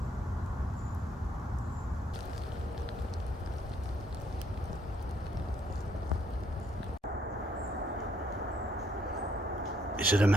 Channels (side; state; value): both; normal; correlation 0.69